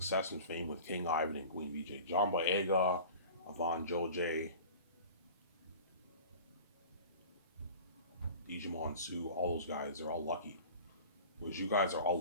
and fame with King Ivan and Queen VJ. John Boyega, Avon Joj, Digimon Sue, all those guys, they're all lucky. Whereas you guys are all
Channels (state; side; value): inverted; both; correlation -0.40